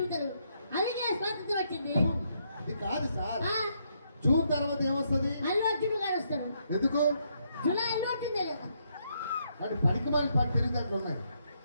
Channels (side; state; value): both; inverted; correlation -0.76